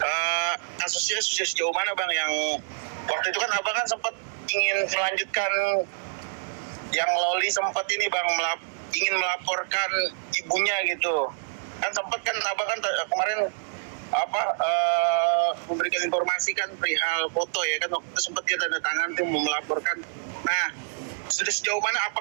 kasusnya sudah sejauh mana bang, yang waktu itu kan abang kan sempat ingin melanjutkan yang Loli sempat ini bang, ingin melaporkan ibunya gitu. Kan sempat kan abang kan kemarin memberikan informasi kan perihal foto ya kan, waktu itu sempat dia tanda tangan tuh mau melaporkan. Nah, sudah sejauh mana,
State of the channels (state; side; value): silent; left; digital silence